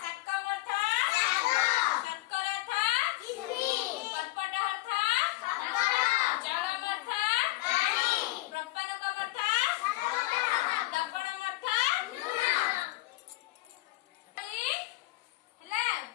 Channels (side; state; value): right; quieter; 19.5 dB